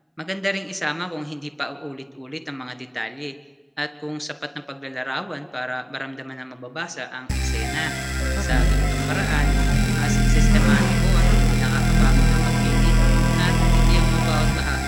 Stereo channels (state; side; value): identical; both; correlation 1.00